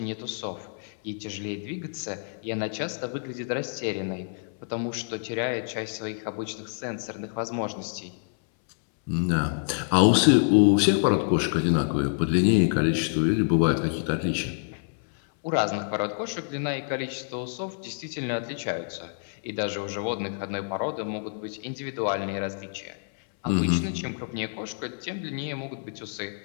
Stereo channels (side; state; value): right; silent; 60 dB below the other